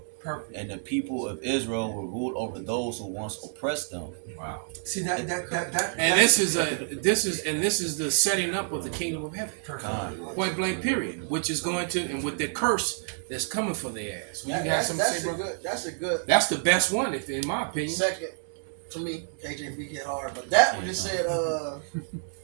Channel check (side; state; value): left; silent; digital silence